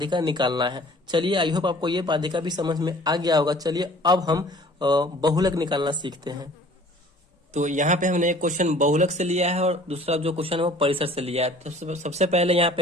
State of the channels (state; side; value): normal; both; correlation 0.50